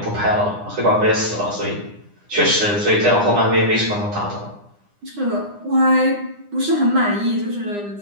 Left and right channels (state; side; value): late; left; 9.8 ms